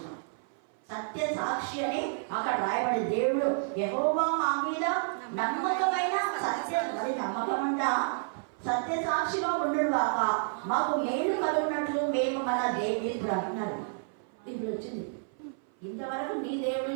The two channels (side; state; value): left; silent; 56 dB below the other